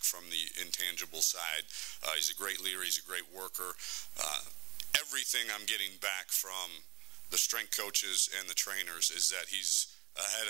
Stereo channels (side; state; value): left; quieter; 22.2 dB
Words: from the intangible side. He's a great leader. He's a great worker. Everything I'm getting back from the strength coaches and the trainers is that he's ahead